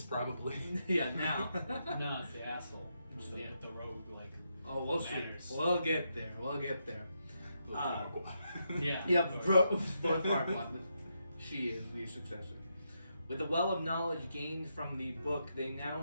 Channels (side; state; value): both; inverted; correlation -0.82